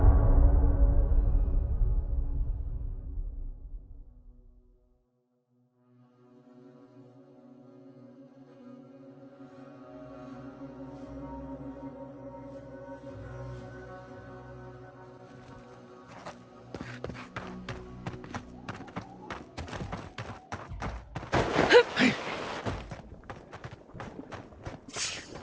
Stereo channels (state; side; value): identical; both; correlation 1.00